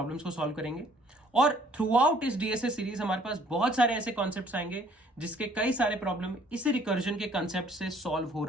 को सॉल्व करेंगे, और थ्रू आउट इस डीएसए सीरीज हमारे पास बहुत सारे ऐसे कॉन्सेप्ट्स आएंगे जिसके कई सारे प्रॉब्लम इस रिकर्जन के कॉन्सेप्ट से सॉल्व हो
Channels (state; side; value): normal; both; correlation 0.59